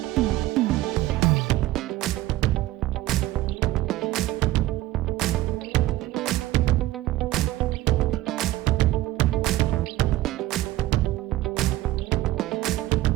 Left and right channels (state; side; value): quieter; left; 16.0 dB